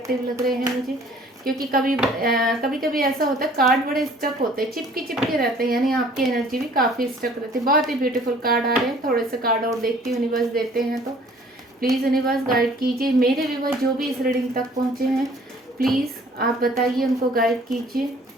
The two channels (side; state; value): both; normal; correlation 0.54